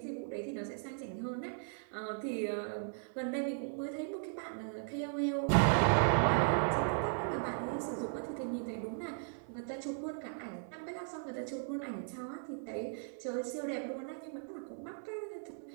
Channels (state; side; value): silent; left; 53 dB below the other